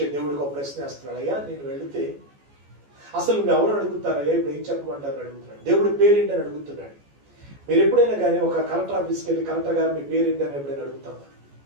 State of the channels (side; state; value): left; late; 14 ms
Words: దేవుడికి ఒక ప్రశ్న వేస్తున్నాడు. అయ్యా నేను వెళితే అసలు నువ్వు ఎవరు అడుగుతారయ్యా, ఇప్పుడు ఏం చెప్పమంటారు అడుగుతున్నాడు. దేవుడి పేరేంటి అని అడుగుతున్నాడు. మీరు ఎప్పుడైనా కానీ ఒక కలెక్టర్ ఆఫీస్కి వెళ్ళి కలెక్టర్ గారు మీ పేరేంటి అని ఎప్పుడైనా అడుగుతామా?